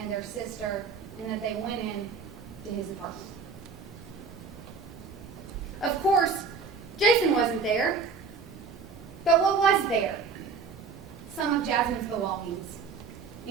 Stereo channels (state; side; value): quieter; left; 5.1 dB